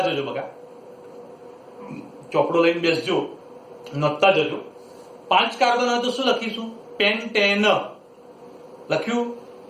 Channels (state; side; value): identical; both; correlation 1.00